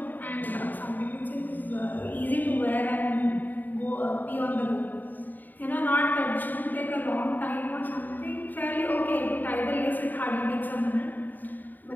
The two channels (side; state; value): right; late; 0.088 ms